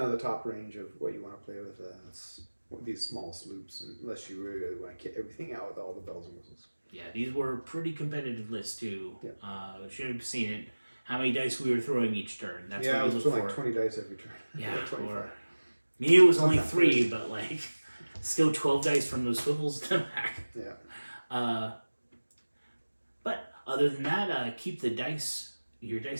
the top range of what you want to play with these small sloops, unless you really want to kit everything out with all the bells and whistles. Yeah, these were pretty competitive lists too. Yeah. Should have seen it. How many dice we were throwing each turn. That's what you look for. Like 20 dice every turn. Yeah, or me it was only 3, but like still 12 dice from those swivels to the back. Yeah. But other than that, keep your dice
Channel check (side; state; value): both; inverted; correlation -1.00